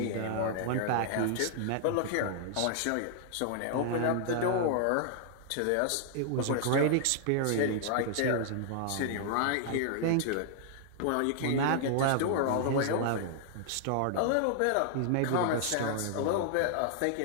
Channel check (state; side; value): different; both; correlation -0.01